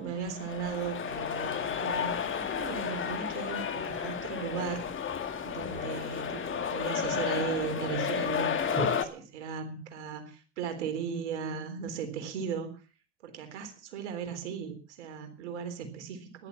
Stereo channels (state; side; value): normal; both; correlation -0.04